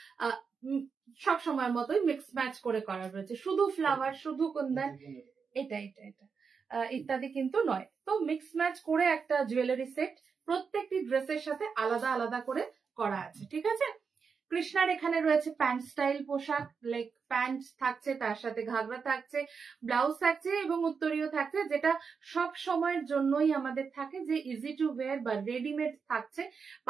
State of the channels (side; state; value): left; quieter; 5.7 dB